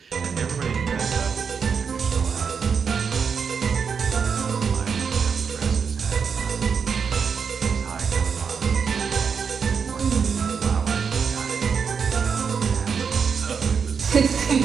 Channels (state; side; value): quieter; left; 6.2 dB